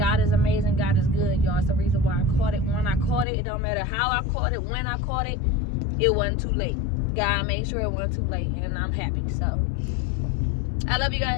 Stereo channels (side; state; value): right; drops out; at 3.2 s